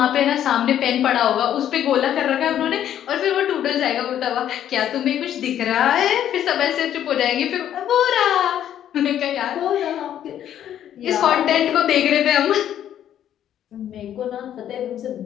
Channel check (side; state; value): right; quieter; 10.6 dB